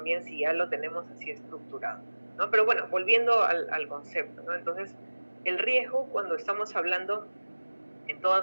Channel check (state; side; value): inverted; both; correlation -1.00